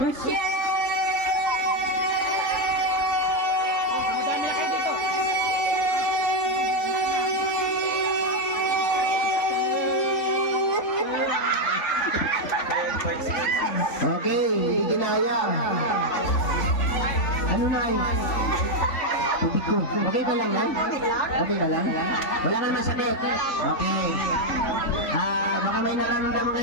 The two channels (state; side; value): late; right; 3.5 ms